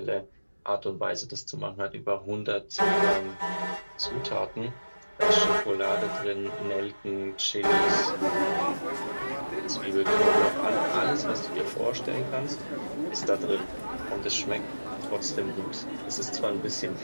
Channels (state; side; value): inverted; both; correlation -1.00